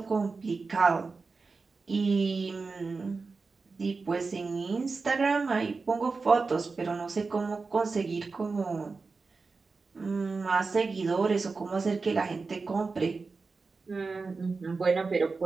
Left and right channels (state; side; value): quieter; left; 4.3 dB